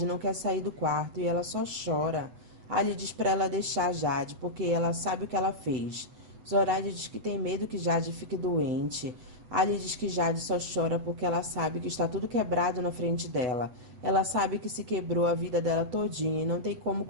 não quer sair do quarto e ela só chora. Ali diz para ela deixar Jade porque ela sabe o que ela fez. Zoraide diz que tem medo que Jade fique doente. Ali diz que Jade só chora porque ela sabe que está tudo quebrado na frente dela. Ela sabe que se quebrou a vida dela todinha e não tem como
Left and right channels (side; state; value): left; late; 8.1 ms